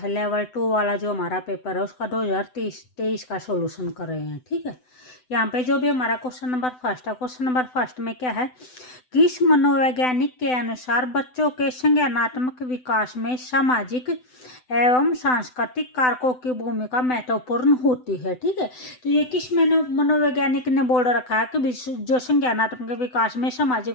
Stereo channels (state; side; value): late; right; 7.9 ms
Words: लेवल 2 वाला जो हमारा पेपर है उसका 2023 का सॉल्यूशन कर रहे हैं। ठीक है, यहाँ पे जो भी हमारा क्वेश्चन नंबर फर्स्ट है, क्वेश्चन नंबर फर्स्ट में क्या है, किस मनोवैज्ञानिक के अनुसार बच्चों के संज्ञानात्मक विकास में सामाजिक एवं सांस्कृतिक कारकों की भूमिका महत्वपूर्ण होती है। ठीक है, तो ये किस मनोवैज्ञानिक ने बोल रखा है कि जो संज्ञानात्मक विकास में